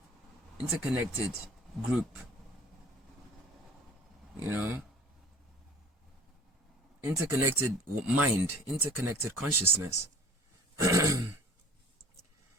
Interconnected group. You know? Interconnected mind. Interconnected consciousness.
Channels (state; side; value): normal; both; correlation 0.47